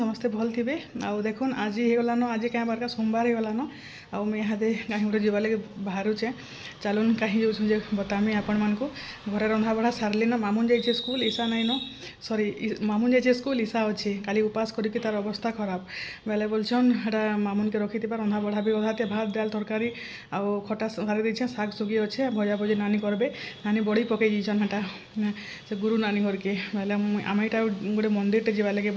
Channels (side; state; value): both; identical; correlation 1.00